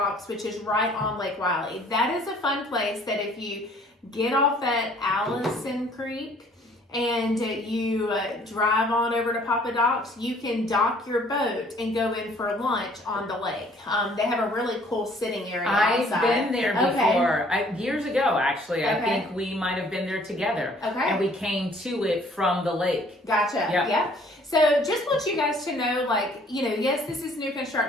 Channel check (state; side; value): normal; both; correlation 0.58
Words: which is right on Lake Wylie. That is a fun place that if you get off at Allison Creek and you drive on over to Papa Doc's, you can dock your boat and go in for lunch on the lake. They have a really cool sitting area outside. I've been there before. Years ago, actually. I think we might have been there together. Okay. And we came to it from the lake. Gotcha. Yep. Yeah. So just want you guys to know, yes, this is new